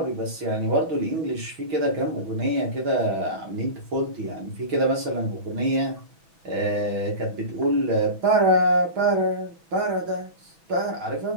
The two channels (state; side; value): late; left; 6.1 ms